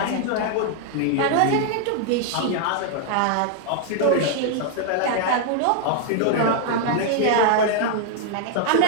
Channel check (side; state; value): both; different; correlation 0.00